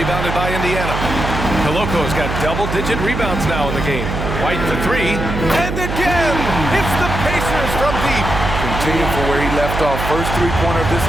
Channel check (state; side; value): noise; right; hum, 4 dB below the sound